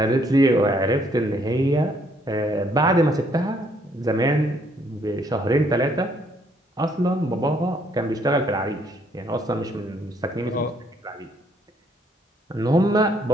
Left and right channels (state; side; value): normal; both; correlation 0.68